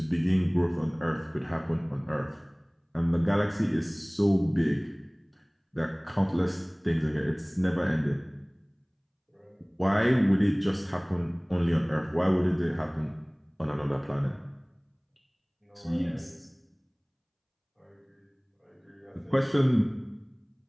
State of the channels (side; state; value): both; identical; correlation 1.00